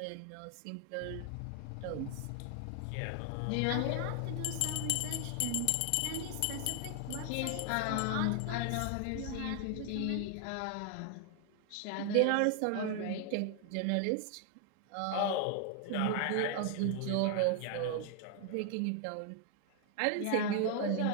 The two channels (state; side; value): different; both; correlation 0.00